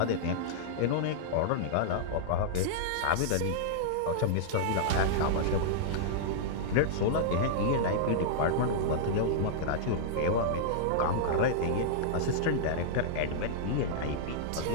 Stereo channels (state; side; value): different; both; correlation -0.02